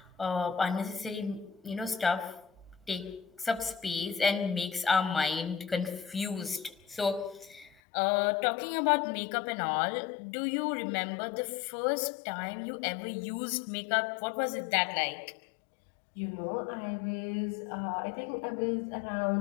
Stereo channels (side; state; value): right; drops out; at 7.7 s